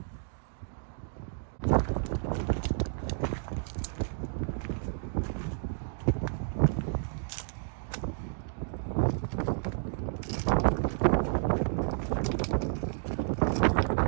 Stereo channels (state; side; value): silent; left; digital silence